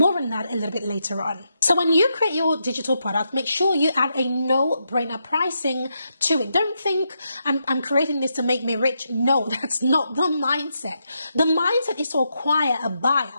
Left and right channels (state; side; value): inverted; both; correlation -0.82